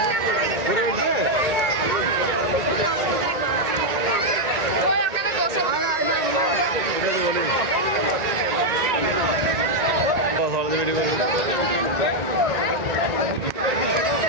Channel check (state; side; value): late; left; 1.9 ms